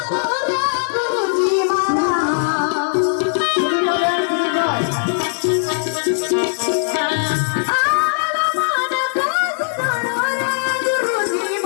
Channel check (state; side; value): silent; right; digital silence